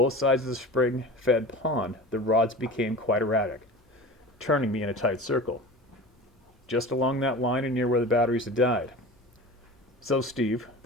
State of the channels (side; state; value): both; normal; correlation 0.35